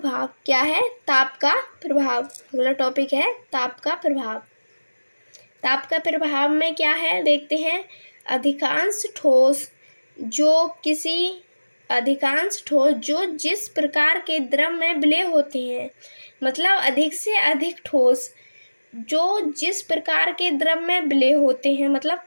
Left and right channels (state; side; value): inverted; both; correlation -1.00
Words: क्या है, ताप का प्रभाव। अगला टॉपिक है ताप का प्रभाव। ताप का प्रभाव में क्या है देखते हैं। अधिकांश ठोस जो जिस प्रकार के द्रव में विलेय होते हैं, मतलब अधिक से अधिक ठोस जो जिस प्रकार के द्रव में विलेय होते हैं, मतलब